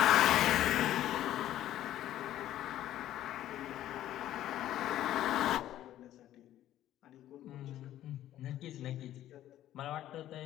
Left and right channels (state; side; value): quieter; right; 12.8 dB